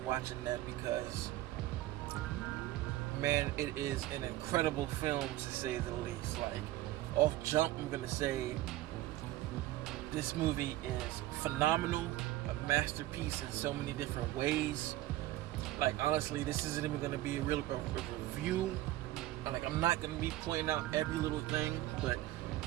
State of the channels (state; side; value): quieter; left; 15.7 dB